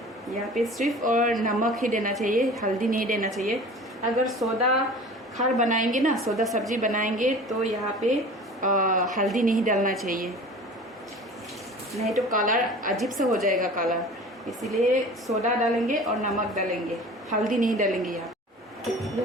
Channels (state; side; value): normal; both; correlation 0.41